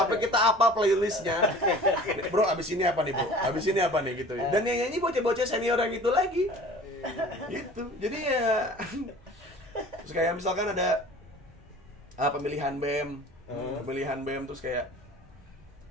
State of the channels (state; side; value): normal; both; correlation 0.44